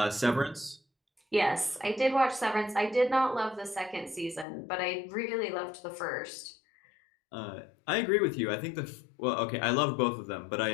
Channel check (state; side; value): drops out; right; at 4.5 s